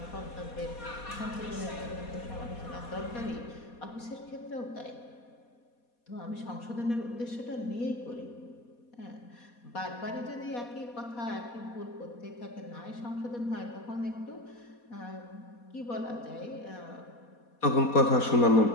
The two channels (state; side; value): late; right; 4.2 ms